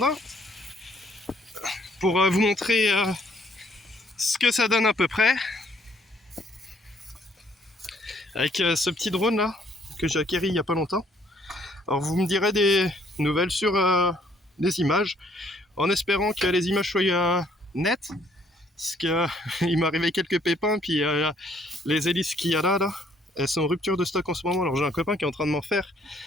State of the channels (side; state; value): both; normal; correlation 0.65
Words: Pour vous montrer ce que ça donne à peu près. Avec ce petit drone là, que j'ai acquéri il n'y a pas longtemps. Alors vous me direz des nouvelles sur les images, en espérant que les images soient nettes. Parce qu'il m'est arrivé quelques pépins, puis les hélices qu'il y a là, elles sont en rupture de stock en ce moment. Alors j'ai un copain qui est en train de m'en faire